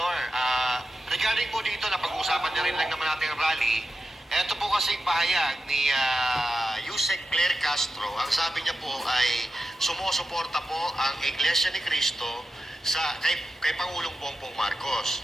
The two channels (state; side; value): normal; both; correlation 0.92